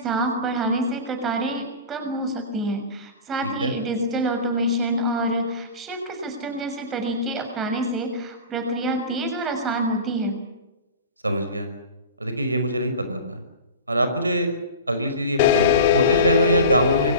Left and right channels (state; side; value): inverted; both; correlation -0.33